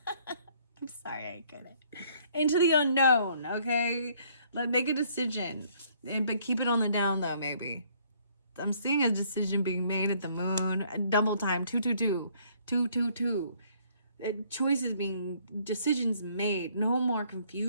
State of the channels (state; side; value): inverted; both; correlation -0.63